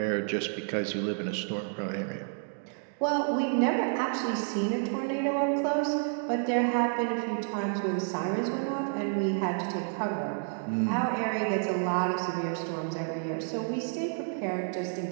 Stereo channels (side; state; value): left; silent; 58 dB below the other